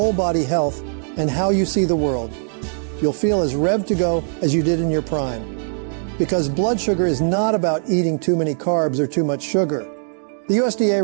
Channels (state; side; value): silent; left; digital silence